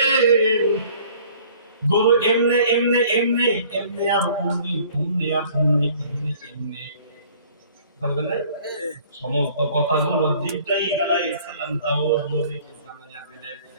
গরু এমনে এমনে এমনে এমনে আর অমনি অমনি আর অমনি এমনে এমনে বলবেন না, সমস্ত কথাগুলো জিবরাইল আলাইহিস সালাম দাউদ নবীকে জানায়া দিলেন।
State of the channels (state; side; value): inverted; both; correlation -0.53